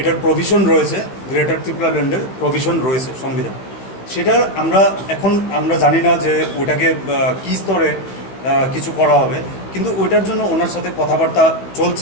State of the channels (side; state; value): right; late; 16 ms